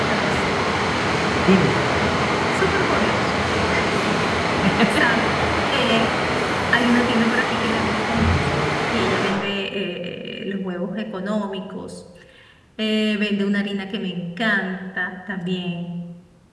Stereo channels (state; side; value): identical; both; correlation 1.00